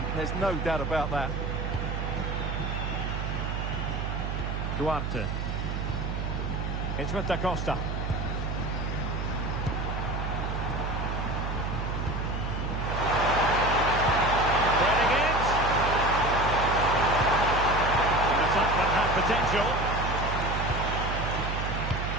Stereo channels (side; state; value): right; noise; hum, 2 dB below the sound